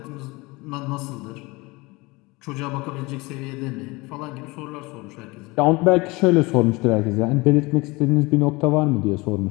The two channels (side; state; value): right; quieter; 23.9 dB